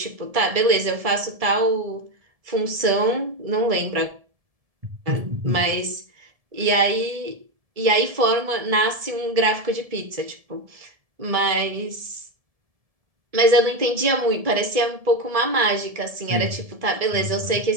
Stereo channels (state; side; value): late; left; 1.7 ms